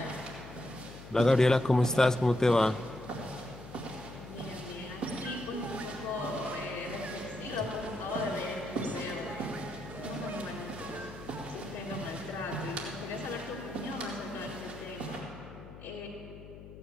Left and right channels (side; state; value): left; noise; hum, 15 dB below the sound